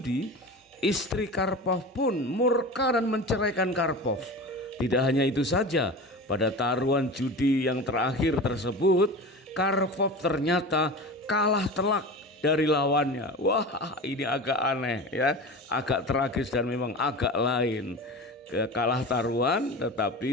istri Karpov pun murka dan menceraikan Karpov. Tidak hanya itu saja, pada taruhan judi yang terakhir tersebut, Karpov ternyata kalah telak dari lawannya. Wah, ini agak aneh, ya, agak tragis dan memang agak lain. Kalah taruhan,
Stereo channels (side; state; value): both; normal; correlation 0.31